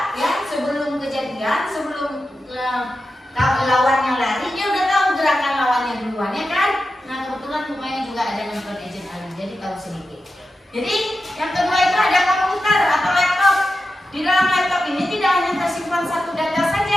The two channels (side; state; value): both; normal; correlation 0.91